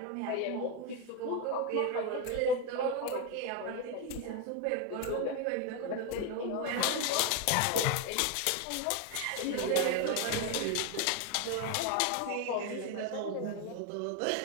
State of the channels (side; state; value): both; different; correlation 0.01